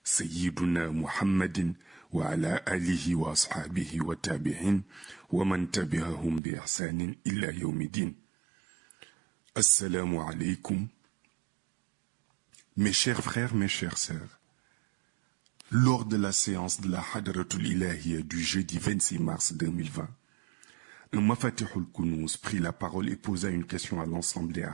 سيدنا محمد وعلى آله وأصحابه والتابعين ومن تبعهم بإحسان إلى يوم الدين. Assalamu alaikum. Mes chers frères, mes chères sœurs, lors de la séance de la Hadratul Ilahiyya du jeudi 26 mars 2020, un Mafatihul Kunuz prit la parole et posa une question à l'ensemble des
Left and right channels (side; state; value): left; drops out; at 6.4 s